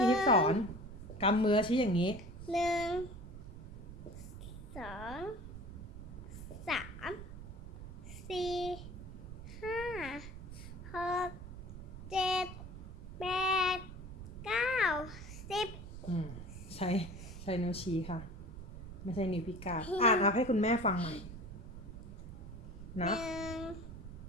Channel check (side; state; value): right; noise; rumble, 11 dB below the sound